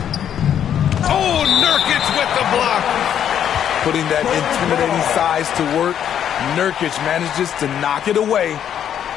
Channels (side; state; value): right; quieter; 9.5 dB